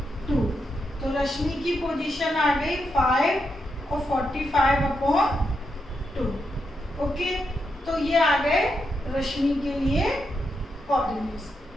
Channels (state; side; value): normal; both; correlation 0.83